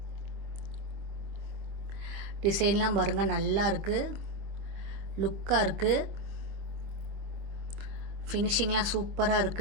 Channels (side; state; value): left; late; 25 ms